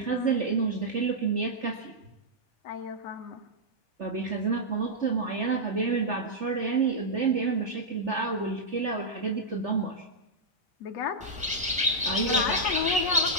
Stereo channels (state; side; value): normal; both; correlation -0.08